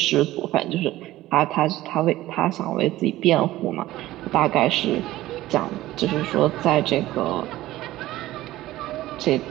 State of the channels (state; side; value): quieter; left; 16.0 dB